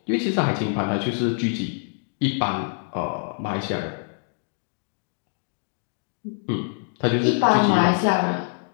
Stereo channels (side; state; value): right; silent; digital silence